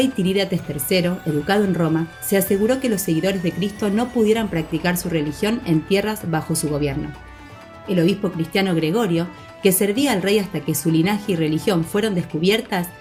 Tirídates III, educado en Roma, se aseguró que los seguidores de Cristo no pudieran practicar su religión en tierras bajo su gobierno. El obispo cristiano Gregorio, que servía al rey hasta que su linaje y religión fueron descubiertas,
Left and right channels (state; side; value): identical; both; correlation 1.00